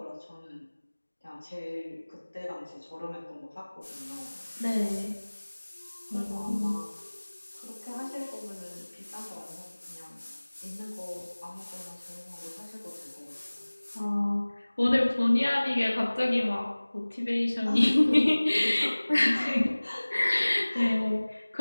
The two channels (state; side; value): inverted; both; correlation -1.00